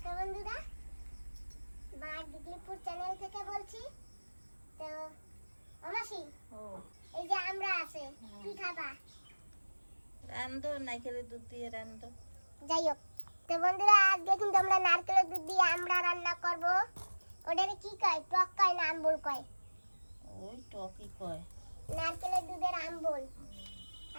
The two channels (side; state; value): both; inverted; correlation -1.00